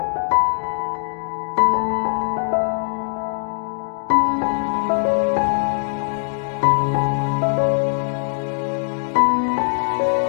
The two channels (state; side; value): silent; right; digital silence